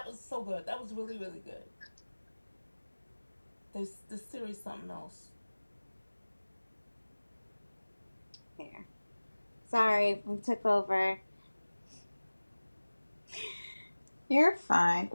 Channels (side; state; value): both; inverted; correlation -1.00